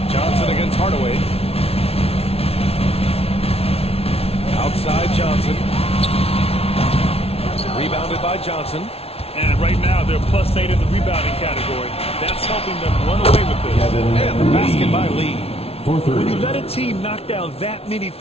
Johnson against Hardaway. Outside Johnson. Rebounded by Johnson. And right now, they're +8 in the rebounding category. That's helping them run away with this. And the basket by Lee. When you let a team knock down that many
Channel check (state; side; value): late; right; 0.29 ms